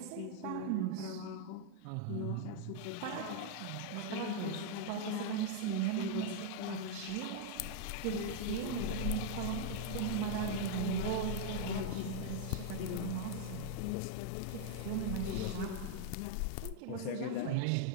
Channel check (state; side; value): different; both; correlation 0.00